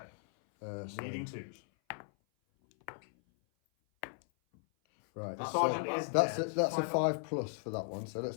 So- Needing 2s. Right. The That's sergeant a- is That's a, dead. that's a 5 5 plus for that one, so let's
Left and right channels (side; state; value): right; silent; 54 dB below the other